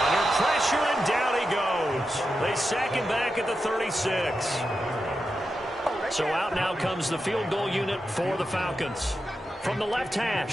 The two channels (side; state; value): both; normal; correlation 0.89